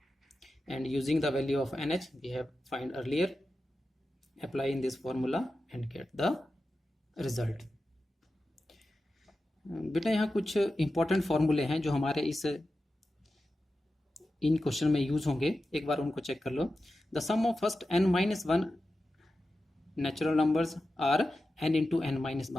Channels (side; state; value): both; normal; correlation 0.92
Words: And using the value of nh we have find earlier, apply in this formula and get the result. बेटा यहाँ कुछ important फॉर्मूले हैं जो हमारे इन question में use होंगे, एक बार उनको चेक कर लो. The sum of first n minus 1 natural numbers are n into n minus